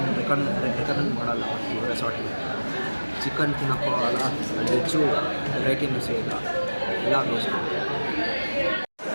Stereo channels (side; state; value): both; inverted; correlation -1.00